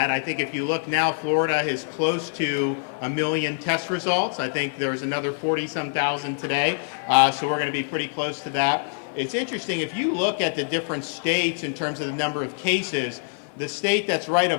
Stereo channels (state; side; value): silent; right; digital silence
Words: I think if you look now, Florida is close to 1 million test results. I think there's another 40-some thousand today, so we're going to be pretty close to that. It's interesting, if you look at the different states in terms of the number of cases, the state that's right